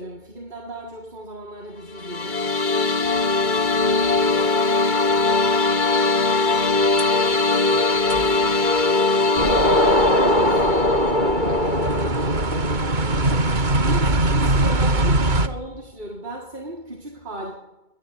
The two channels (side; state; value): left; late; 2.2 ms